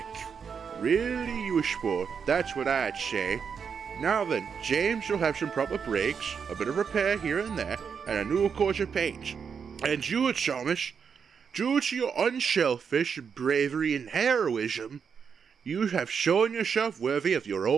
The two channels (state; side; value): quieter; left; 6.5 dB